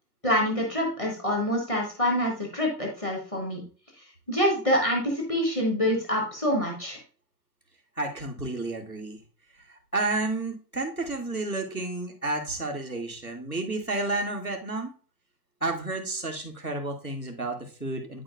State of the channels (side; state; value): right; late; 1.2 ms